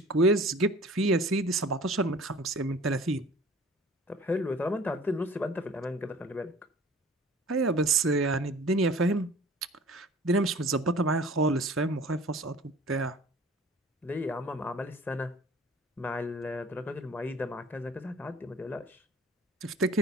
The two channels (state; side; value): normal; both; correlation 0.46